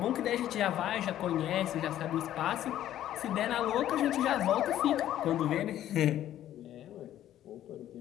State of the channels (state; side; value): quieter; right; 12.2 dB